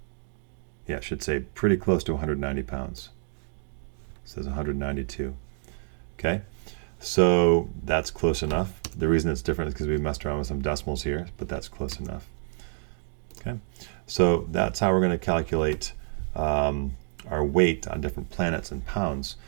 Yeah, it should say pretty close to 190 pounds. It says 192. Okay, so that's close enough. The reason it's different is because we messed around with some decimals here, but that's close enough. Okay, so that's how we're going to calculate our weight on different planets in pounds.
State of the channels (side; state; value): left; silent; digital silence